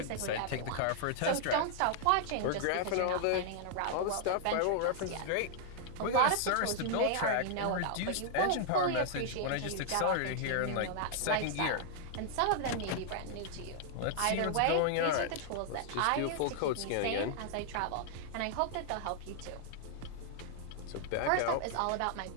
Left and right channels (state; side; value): different; both; correlation -0.01